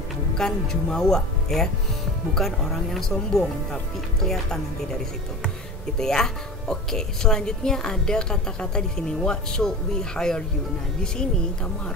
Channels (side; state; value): both; normal; correlation 0.32